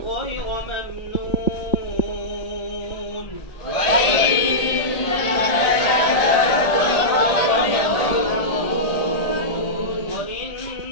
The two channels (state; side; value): late; right; 1.7 ms